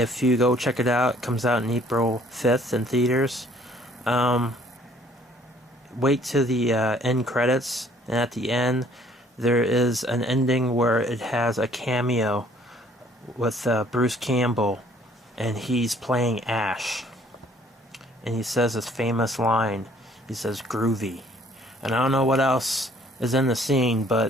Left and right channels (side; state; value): both; normal; correlation 0.59